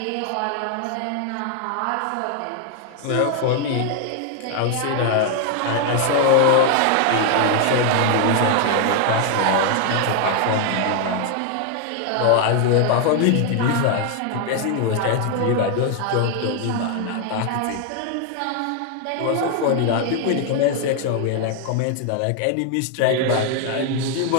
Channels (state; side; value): different; both; correlation 0.00